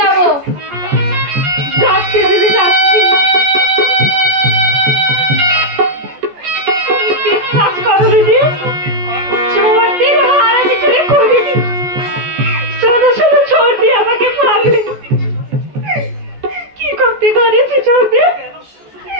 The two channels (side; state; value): left; late; 14 ms